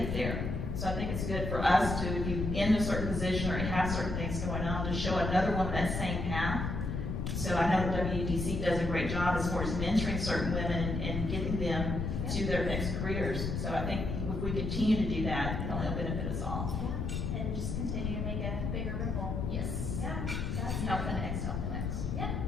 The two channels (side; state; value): left; noise; rumble, 2 dB below the sound